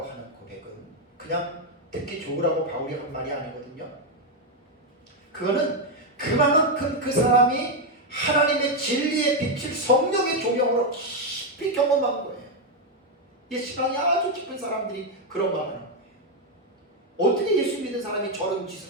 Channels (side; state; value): both; normal; correlation 0.03